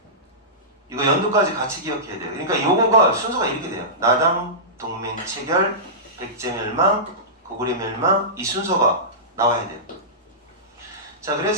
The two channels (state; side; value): normal; both; correlation -0.18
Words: 이거 연도까지 같이 기억해야 돼요. 그러니까 요거가 순서가 이렇게 돼요. 나당 동맹 체결, 백제 멸망, 고구려 멸망 이 순서가 나와야 돼요. 자